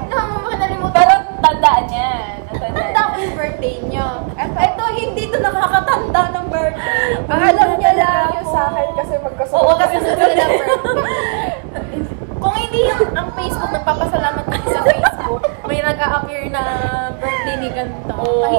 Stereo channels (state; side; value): silent; left; 59 dB below the other